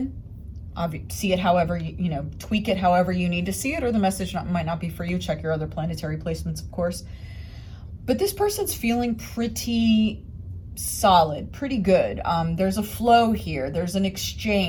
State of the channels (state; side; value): identical; both; correlation 1.00